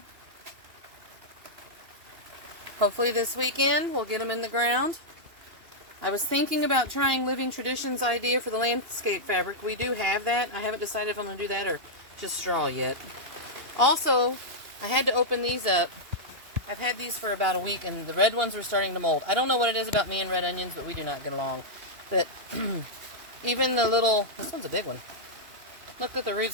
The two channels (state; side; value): late; left; 2.8 ms